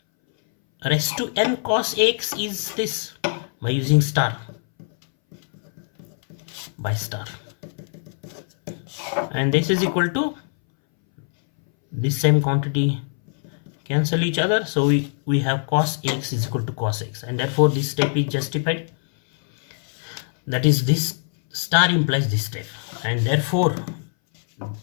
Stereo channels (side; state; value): right; silent; 62 dB below the other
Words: raised to n cos x is this, by using star, by star, and this is equal to this same quantity cancel each other, so we have cos x is equal to cos x, and therefore this step is justified. That is, this star implies this step, and therefore